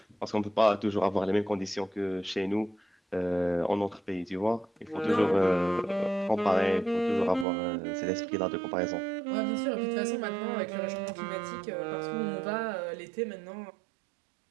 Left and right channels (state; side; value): drops out; left; at 7.5 s